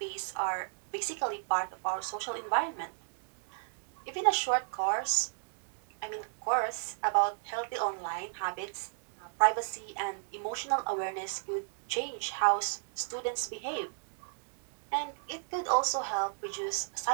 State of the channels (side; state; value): left; silent; digital silence